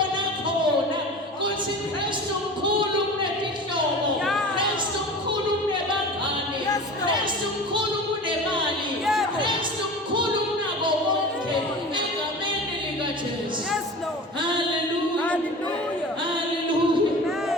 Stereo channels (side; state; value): both; normal; correlation 0.35